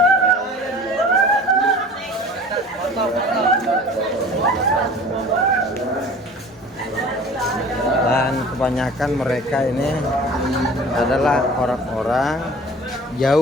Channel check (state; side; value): normal; both; correlation 0.44